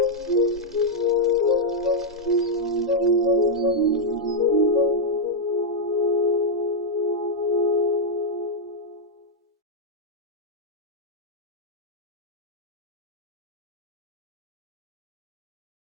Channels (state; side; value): normal; both; correlation -0.04